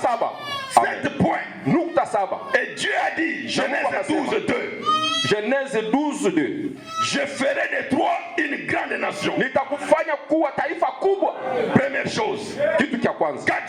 7 points. Nukta saba. Et Dieu a dit, Genèse 12, 2. Genèse 12:2. Je ferai de toi une grande nation. Nitakufanya kuwa taifa kubwa. Première chose. Kitu cha kwanza. Quand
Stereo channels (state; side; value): identical; both; correlation 1.00